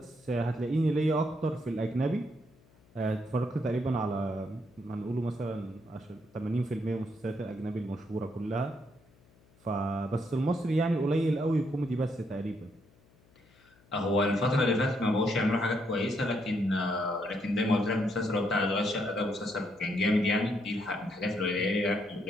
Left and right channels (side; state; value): left; noise; hum, 30 dB below the sound